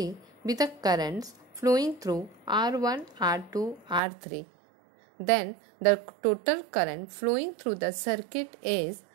be the currents flowing through R1, R2, R3. Then the total current flowing through the circuit is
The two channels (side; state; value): left; drops out; at 4.0 s